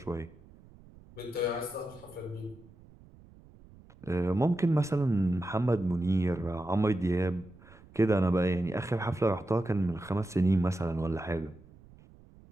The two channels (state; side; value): noise; right; rumble, 23 dB below the sound